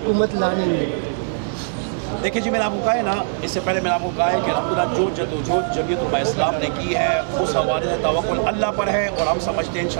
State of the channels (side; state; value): left; silent; digital silence